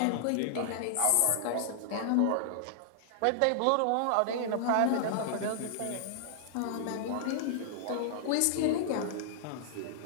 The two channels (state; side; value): different; both; correlation -0.01